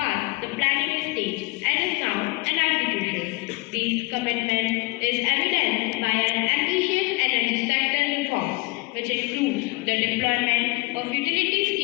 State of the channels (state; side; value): quieter; right; 24.9 dB